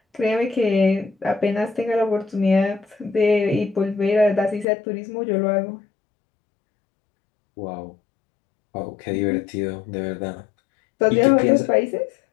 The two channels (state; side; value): drops out; right; at 4.7 s